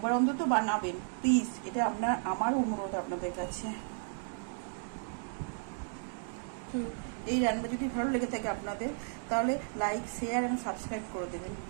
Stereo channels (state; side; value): silent; left; digital silence